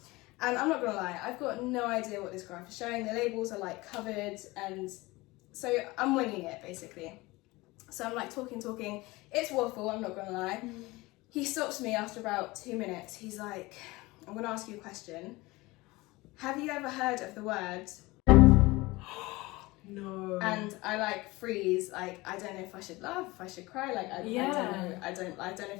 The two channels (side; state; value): right; quieter; 21.6 dB